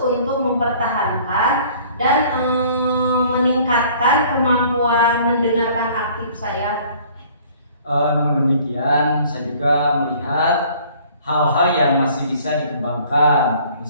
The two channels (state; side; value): inverted; both; correlation -0.54